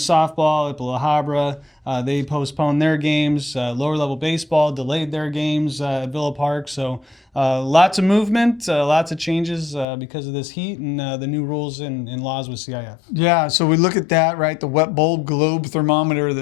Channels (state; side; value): drops out; right; at 9.9 s